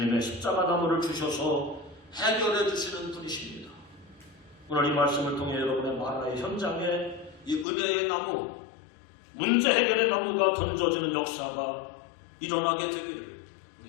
십자가 나무를 주셔서 해결해 주시는 분이십니다. 오늘 이 말씀을 통해 여러분의 마라의 현장에 이 은혜의 나무, 문제 해결의 나무가 던져지는 역사가 일어나게 되기를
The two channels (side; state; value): right; drops out; at 7.7 s